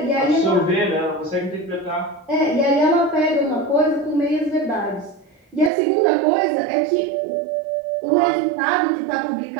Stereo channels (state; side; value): drops out; left; at 5.7 s